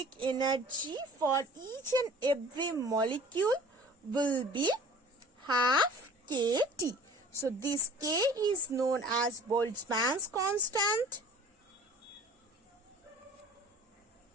energy for each and every molecule will be half kT. So this K is known as Boltzmann's constant,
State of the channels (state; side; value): normal; both; correlation 0.47